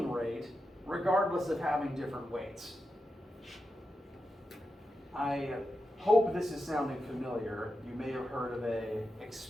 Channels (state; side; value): normal; both; correlation 0.89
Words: rate, regardless of having different weights. I hope this is sounding familiar. You may have heard of an